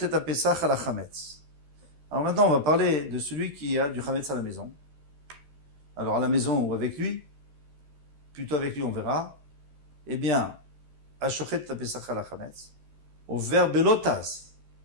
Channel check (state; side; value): late; left; 13 ms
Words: et apesach à la chametz. Alors maintenant, on va parler de celui qui a du chametz à la maison. Alors à la maison ou avec lui, plutôt avec lui, on verra. Eh bien, Ashochet et apesach à la chametz. Au verbe lotaz,